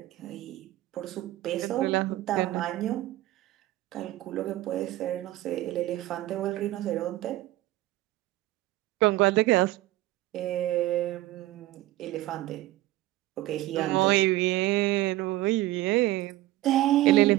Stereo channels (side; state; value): left; quieter; 16.2 dB